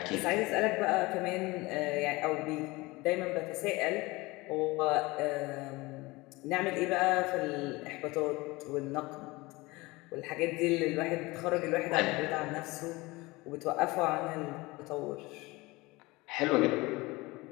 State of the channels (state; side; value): quieter; right; 22.3 dB